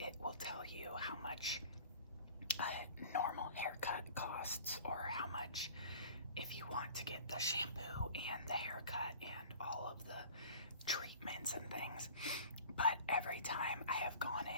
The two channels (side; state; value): both; inverted; correlation -0.44